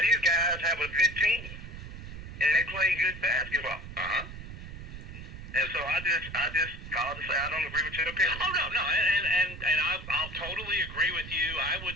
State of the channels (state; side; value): noise; right; rumble, 12 dB below the sound